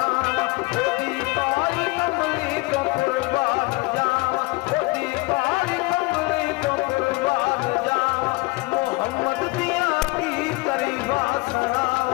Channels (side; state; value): right; quieter; 23.7 dB